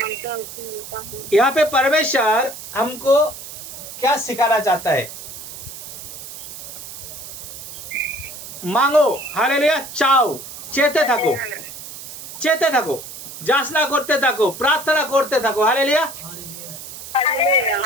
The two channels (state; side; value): noise; right; hiss, 12 dB below the sound